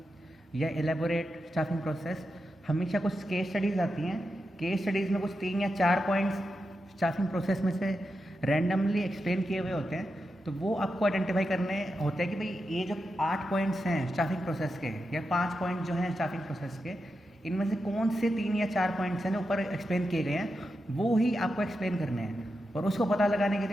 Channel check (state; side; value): normal; both; correlation 0.88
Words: या एलेबोरेट स्टाफिंग प्रोसेस। हमेशा कुछ केस स्टडीज़ आती हैं। केस स्टडीज़ में कुछ 3 या 4 पॉइंट्स स्टाफिंग प्रोसेस में से रैंडमली एक्सप्लेन किए हुए होते हैं। तो वो आपको आइडेंटिफाई करने होते हैं कि भाई ये जो 8 पॉइंट्स हैं स्टाफिंग प्रोसेस के या 5 पॉइंट जो हैं स्टाफिंग प्रोसेस के, इनमें से कौन से 3 या 4 पॉइंट्स हैं जो ऊपर एक्सप्लेन किए गए हैं वो ही आपको एक्सप्लेन करने हैं। और उसको पता लगाने के